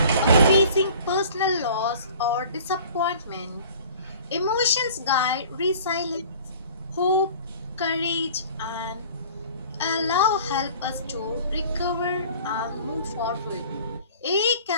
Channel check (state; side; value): inverted; both; correlation -0.47